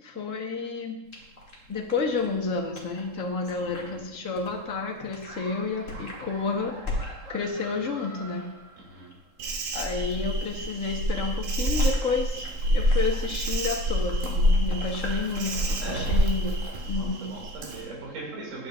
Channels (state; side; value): late; left; 3.7 ms